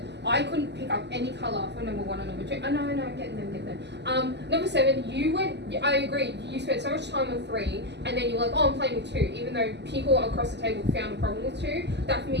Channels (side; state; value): left; late; 0.50 ms